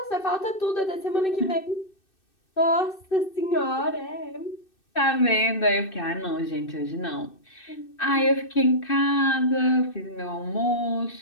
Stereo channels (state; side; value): late; right; 2.6 ms